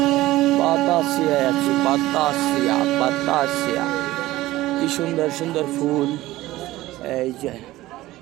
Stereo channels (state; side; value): quieter; left; 17.0 dB